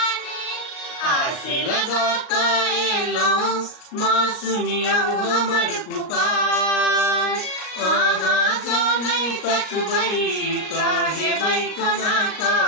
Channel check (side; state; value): right; late; 38 ms